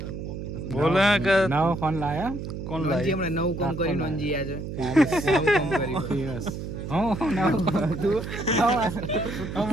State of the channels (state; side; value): noise; right; hum, 7 dB below the sound